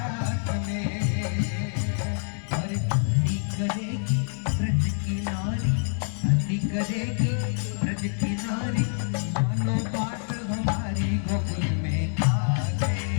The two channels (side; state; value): right; silent; 61 dB below the other